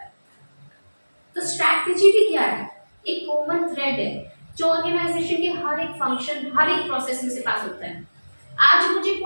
है। तो स्ट्रैटेजी भी क्या है, एक कॉमन थ्रेड है जो ऑर्गेनाइजेशन के हर एक फंक्शन, हर एक प्रोसेस में से पास होता है। आज मुझे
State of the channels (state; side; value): inverted; both; correlation -1.00